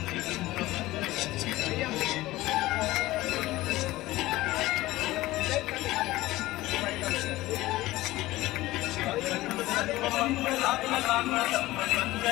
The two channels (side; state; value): right; quieter; 17.8 dB